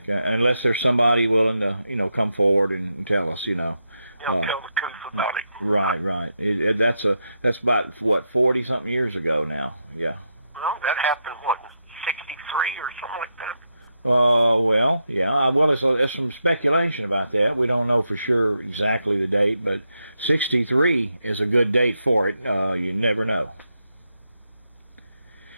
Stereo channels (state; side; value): inverted; both; correlation -0.83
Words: Unless there's somebody willing to, come forward and tell us, Tell the truth about it. Right. That's about what 40-something years ago now. Yeah. Well, that happened what, 63 or something like that. Well, yeah. Well, there's some speculation about that. We don't know for sure exactly the date, but 63 is a good date for it. You never know.